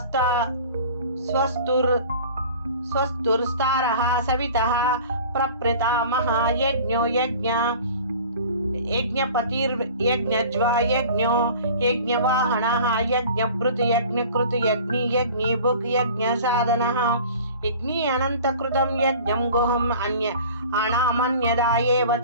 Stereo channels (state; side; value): inverted; both; correlation -0.43